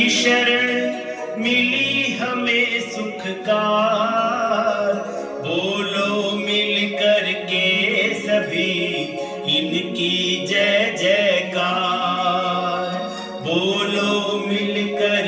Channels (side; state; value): both; identical; correlation 1.00